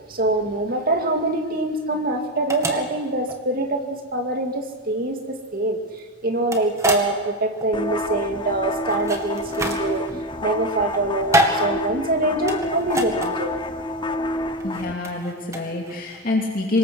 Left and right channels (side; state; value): both; normal; correlation 0.14